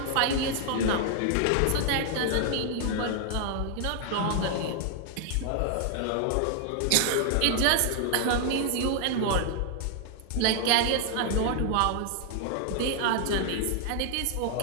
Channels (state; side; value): different; both; correlation 0.00